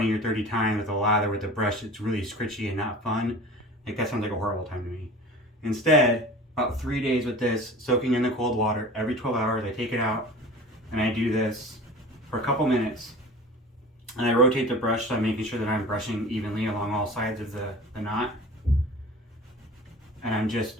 or 30 times with a lather with a brush, it's really scritchy and not fun. Like, that sounds like a horrible time to me. Instead, about 3 days with this, soaking in the cold water, every 12 hours, I take it out and I do this for a couple minutes. And I rotate the brush, so I'm making sure that I'm brushing evenly along all sides of the knot. And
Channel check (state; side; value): normal; both; correlation 0.39